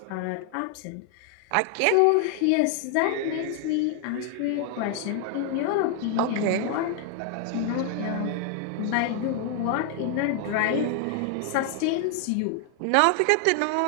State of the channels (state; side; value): different; both; correlation 0.00